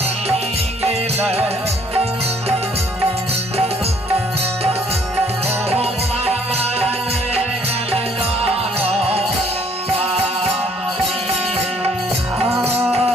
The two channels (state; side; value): normal; both; correlation 0.62